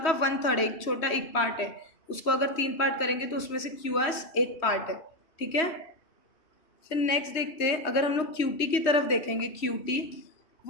का 1/3 है, एक छोटा एक पार्ट है, उसको अगर 3 पार्ट करेंगे तो उसमें से क्यू एस एक पार्ट है। ठीक है, फिर नेक्स्ट देखते हैं, अगर हम लोग क्यू टी की तरफ देखेंगे, क्यू टी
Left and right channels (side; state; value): right; late; 3.1 ms